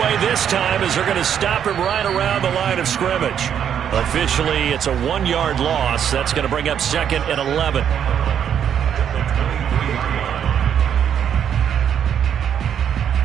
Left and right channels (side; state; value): left; quieter; 8.8 dB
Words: this time as they're going to stop him right around the line of scrimmage. Officially, it's a 1-yard loss. That's going to bring up 2nd and 11.